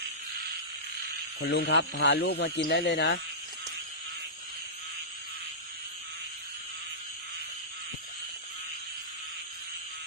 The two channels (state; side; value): normal; both; correlation -0.19